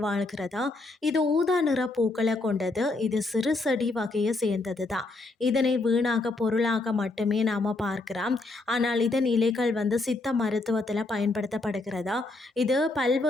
வாழ்கிறதா. இது ஊதா நிற பூக்களை கொண்டது. இது சிறு செடி வகையை சேர்ந்தது தான். இதனை வீணாக பொருளாக மட்டுமே நாம் பார்க்கிறோம். ஆனால் இதன் இலைகள் சித்த மருத்துவத்தில் பயன்படுத்தப்படுகிறதா. இது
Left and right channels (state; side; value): quieter; right; 3.2 dB